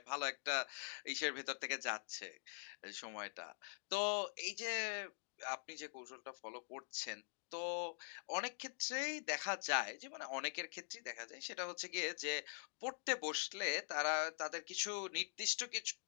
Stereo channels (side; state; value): right; silent; digital silence